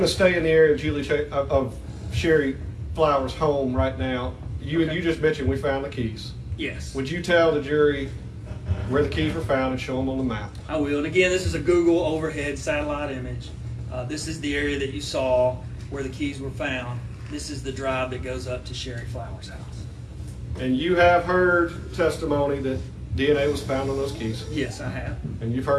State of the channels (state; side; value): identical; both; correlation 1.00